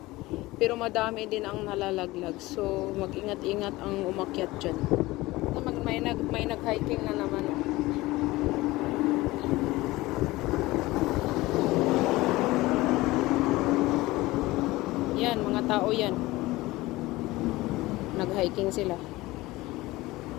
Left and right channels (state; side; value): quieter; right; 19.4 dB